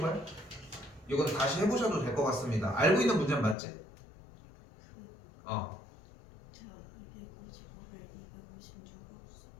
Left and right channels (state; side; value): drops out; right; at 3.6 s